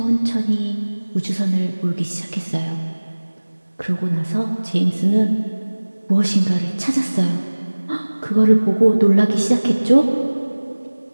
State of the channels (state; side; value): inverted; both; correlation -1.00